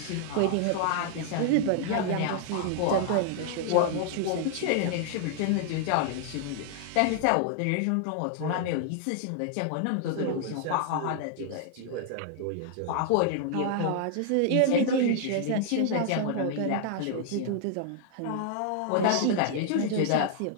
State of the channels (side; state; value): both; different; correlation -0.01